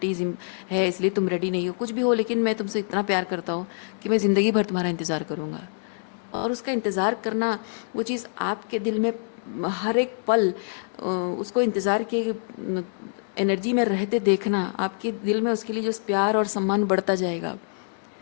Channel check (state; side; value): silent; right; digital silence